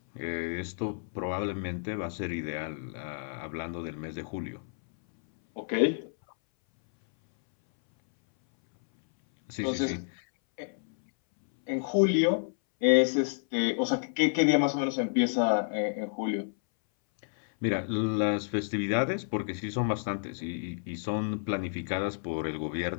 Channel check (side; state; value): right; silent; 58 dB below the other